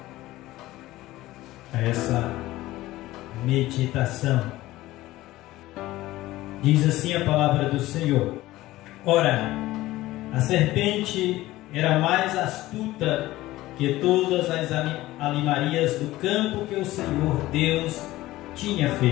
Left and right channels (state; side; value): quieter; right; 17.0 dB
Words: a essa meditação. Diz assim a palavra do Senhor: Ora, a serpente era mais astuta que todas as animarias do campo que o Senhor Deus tinha